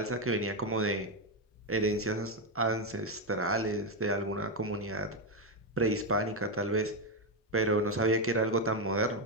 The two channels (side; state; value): both; normal; correlation 0.07